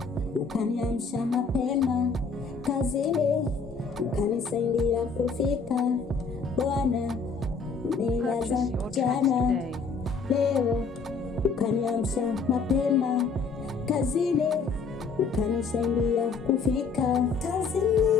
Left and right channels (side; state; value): right; quieter; 4.9 dB